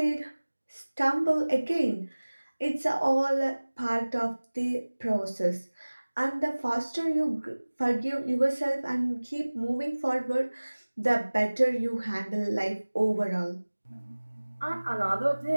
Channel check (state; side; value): inverted; both; correlation -1.00